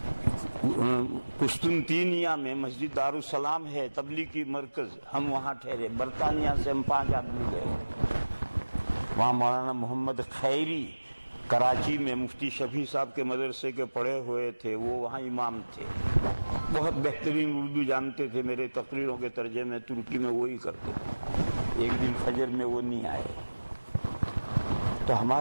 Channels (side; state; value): both; inverted; correlation -1.00